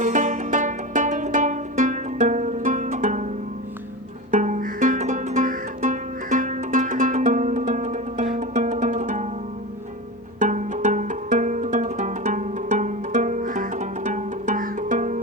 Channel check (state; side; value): normal; both; correlation 0.25